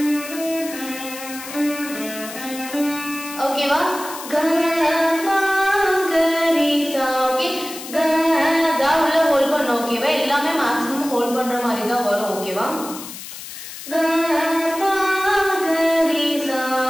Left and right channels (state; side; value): noise; left; hiss, 12 dB below the sound